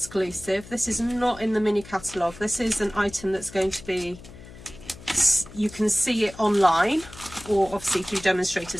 This is not in the mini catalogue. This is an item that's going to be, you can see it online, or obviously through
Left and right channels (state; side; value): noise; left; hum, 18 dB below the sound